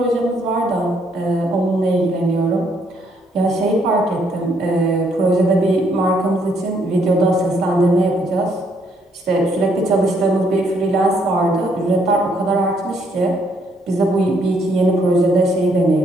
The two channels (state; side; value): normal; both; correlation 0.70